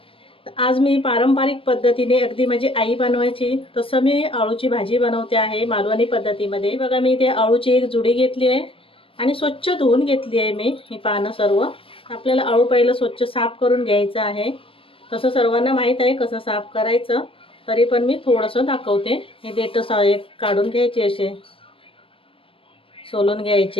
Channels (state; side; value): late; right; 0.26 ms